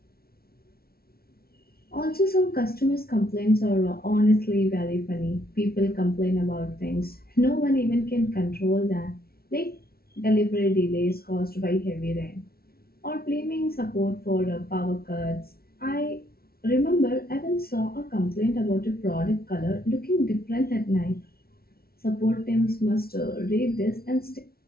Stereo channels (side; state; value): right; late; 0.44 ms